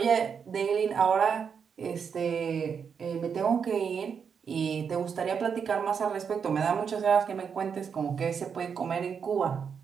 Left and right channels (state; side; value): quieter; left; 6.7 dB